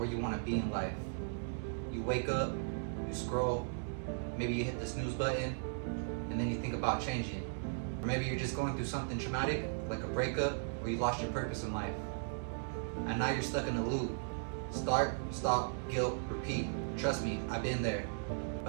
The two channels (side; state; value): left; silent; digital silence